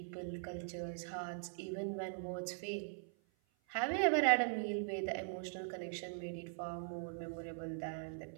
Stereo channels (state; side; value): silent; left; 50 dB below the other